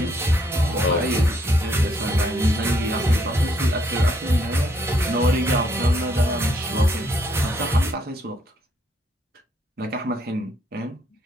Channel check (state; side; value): normal; both; correlation 0.72